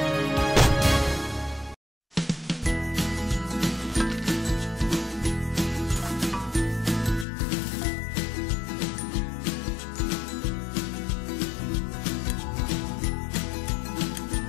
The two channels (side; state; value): right; drops out; at 7.2 s